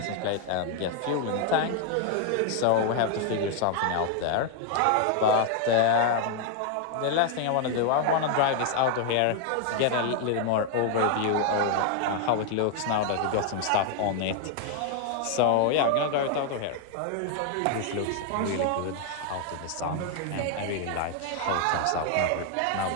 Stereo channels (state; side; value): different; both; correlation 0.00